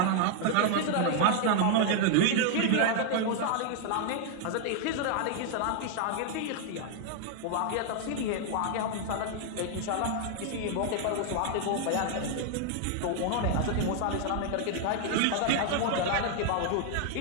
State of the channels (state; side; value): different; both; correlation 0.00